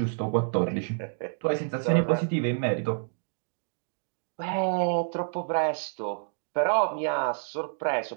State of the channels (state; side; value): silent; left; digital silence